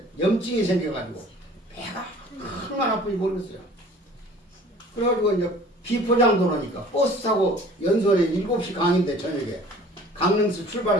염증이 생겨가지고 배가 얼마나 아픈지 모르겠어요. 그래가지고 이제 비포장 도로니까 버스 타고 연수원에 7시 강인데 저녁에 강릉에서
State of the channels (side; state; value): both; normal; correlation 0.49